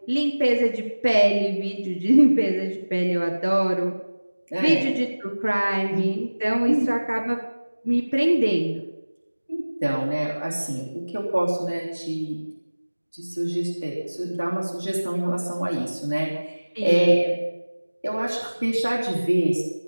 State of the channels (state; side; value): inverted; both; correlation -1.00